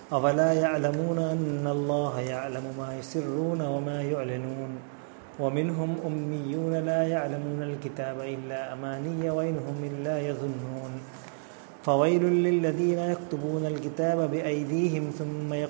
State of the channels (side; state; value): left; silent; digital silence